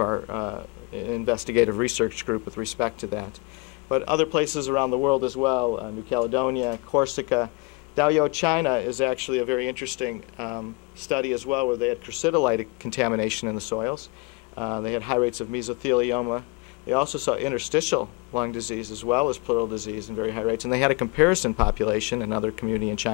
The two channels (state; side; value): quieter; right; 28.3 dB